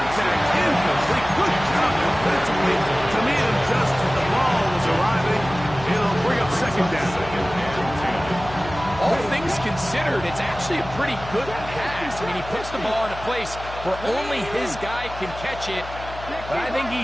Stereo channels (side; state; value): left; noise; hum, 13 dB below the sound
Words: Incomplete. Good job defensively to meet him just as the ball was arriving. It'll bring up 2nd down. All things considered, it's actually a pretty good pass. I mean, he puts the ball in a place where only his guy can catch it. But I think he